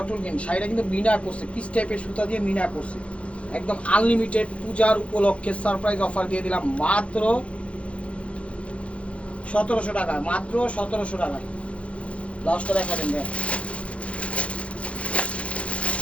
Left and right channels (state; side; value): late; right; 0.062 ms